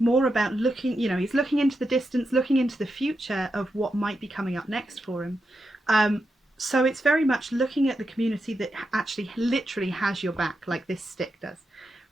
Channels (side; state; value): both; normal; correlation 0.86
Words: about looking, you know, he's looking into the distance, looking into the future of what might be coming up next for him. So it's very much looking at the community that actually literally has your back, like this stick does,